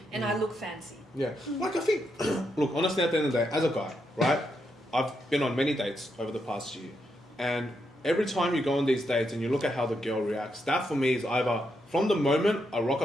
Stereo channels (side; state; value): both; normal; correlation 0.81